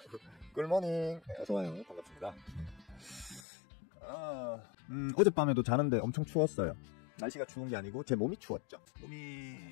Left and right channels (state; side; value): drops out; right; at 3.4 s